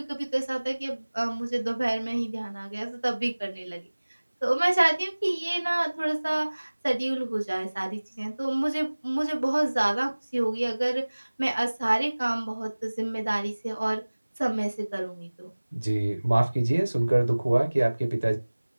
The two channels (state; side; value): inverted; both; correlation -1.00